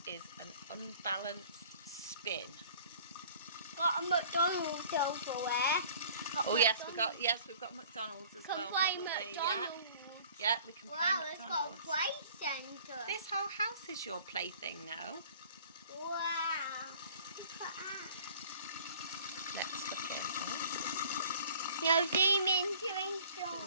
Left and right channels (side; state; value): both; inverted; correlation -0.50